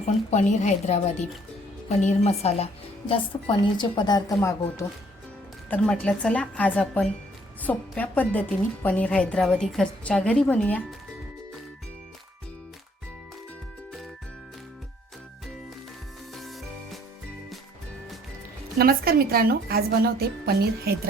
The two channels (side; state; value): both; normal; correlation 0.62